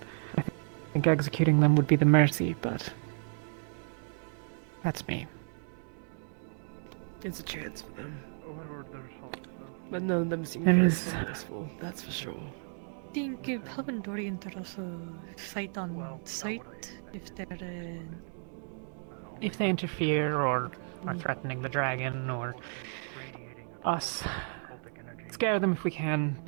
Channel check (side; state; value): left; silent; 56 dB below the other